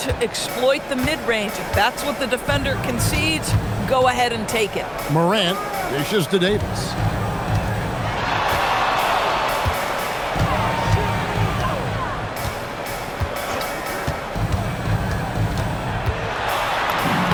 exploit the mid-range. If that's what the defender concedes, go ahead and take it. Morant dishes to Davis.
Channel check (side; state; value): both; identical; correlation 1.00